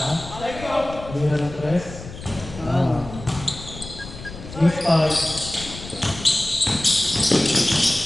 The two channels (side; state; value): left; noise; rumble, 13 dB below the sound